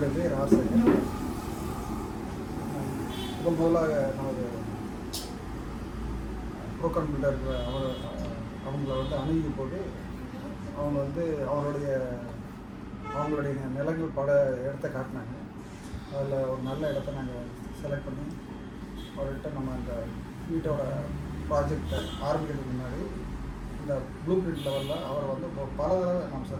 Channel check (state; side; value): identical; both; correlation 1.00